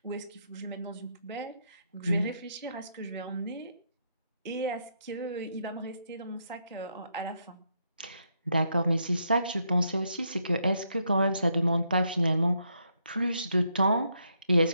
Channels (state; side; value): inverted; both; correlation -0.77